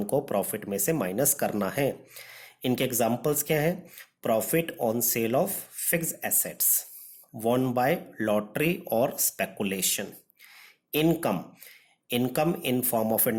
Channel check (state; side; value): identical; both; correlation 1.00